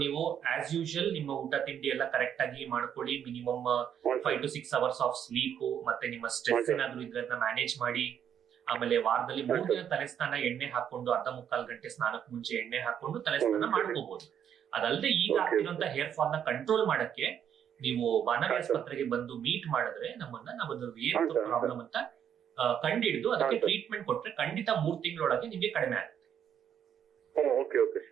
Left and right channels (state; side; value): quieter; left; 9.0 dB